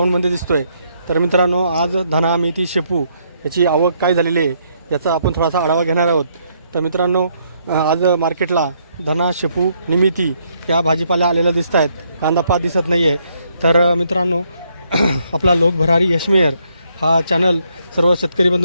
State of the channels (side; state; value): both; inverted; correlation -0.72